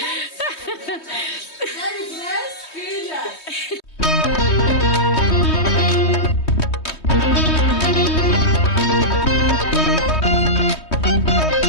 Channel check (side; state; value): right; late; 3.2 ms